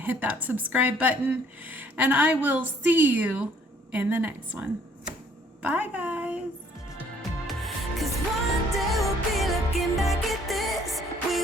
hit that subscribe button. And I will see you in the next one. Bye, guys. 'Cause one day we'll be looking back at this.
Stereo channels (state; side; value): normal; both; correlation 0.61